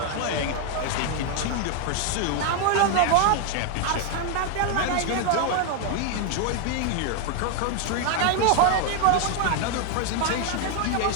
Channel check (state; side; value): different; both; correlation 0.00